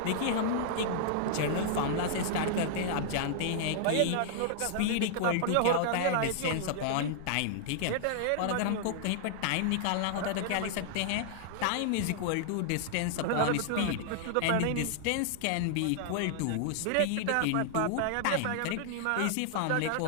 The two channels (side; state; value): both; different; correlation -0.01